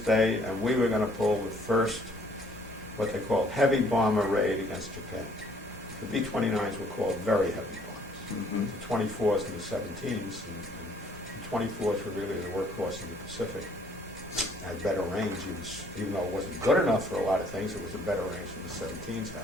and we were going to pull the first, what they called, heavy bomber raid against Japan. The B-29s were called very heavy bombers. Mm-hmm. The 24s and the 17s, and the 24s were really the workhorse in the Pacific. Had better range, even though it wasn't good enough for a lot of things, it was a better range than the 17s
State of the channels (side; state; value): both; normal; correlation 0.62